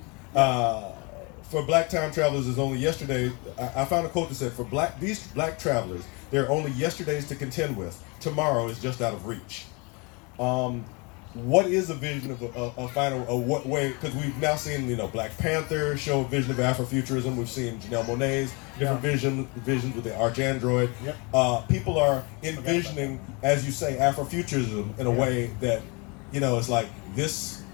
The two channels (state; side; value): quieter; right; 29.8 dB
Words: For black time travelers, is only yesterday. I found a quote that said, "For these black travelers, there are only yesterdays to contend with. Tomorrow is just out of reach." What is a vision of a final? What way? Because we've now seen, Black Panther show a vision of Afrofuturism. We've seen Janelle Monáe's different visions with the Arch Android. Yep. People are envisioning, as you say, Afrofuturism in a way that, it's like this.